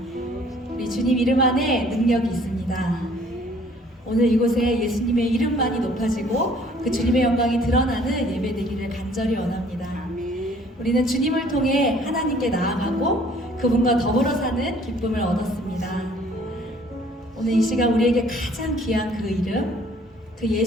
우리 주님 이름 안에 능력이 있습니다. 오늘 이곳에 예수님의 이름만이 높아지고 그 주님의 영광이 드러나는 예배 되기를 간절히 원합니다. 우리는 주님을 통해 하나님께 나아가고 그분과 더불어 사는 기쁨을 얻었습니다. 오늘 이 시간 우리에게 가장 귀한 그 이름, 그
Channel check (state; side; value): normal; both; correlation 0.57